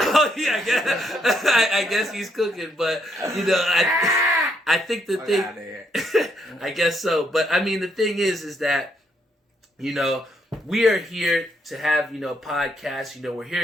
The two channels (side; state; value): both; normal; correlation 0.74